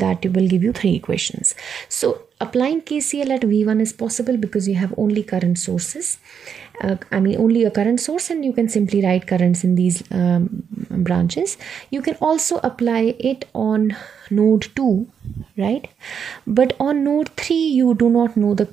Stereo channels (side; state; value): left; quieter; 7.3 dB